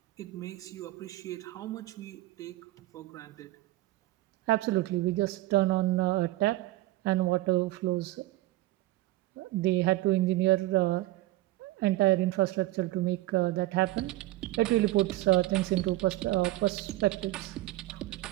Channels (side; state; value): left; quieter; 17.4 dB